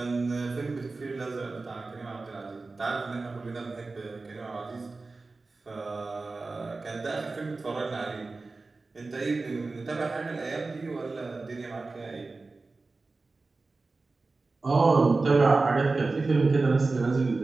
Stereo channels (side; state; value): left; quieter; 3.7 dB